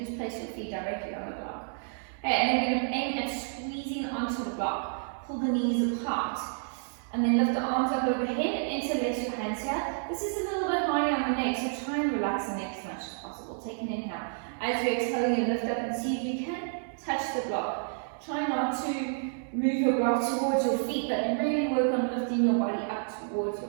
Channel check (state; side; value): silent; left; digital silence